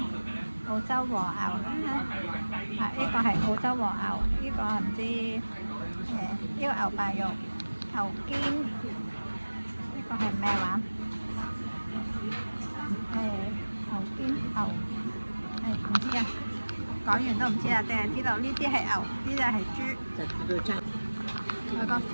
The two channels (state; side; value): inverted; both; correlation -1.00